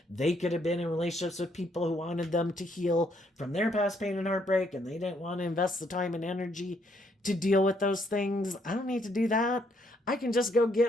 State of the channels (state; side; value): normal; both; correlation 0.71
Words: they could have been in relationships with people who wanted them to heal from their past pain and heartbreak, and they didn't want to invest the time and energy to deal with those things. I don't need to do that. I can just go